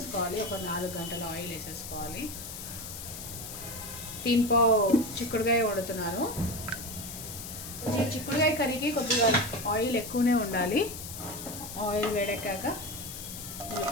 ఒక 4 గంటల ఆయిల్ వేసేసుకోవాలి. దీంట్లో చిక్కుడుకాయ వండుతున్నాను. చిక్కుడుకాయ కర్రీకి కొద్దిగా ఆయిల్ ఎక్కువనే ఉండాలి. ఆయిల్ వేడెక్కాక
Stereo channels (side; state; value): left; noise; hiss, 9 dB below the sound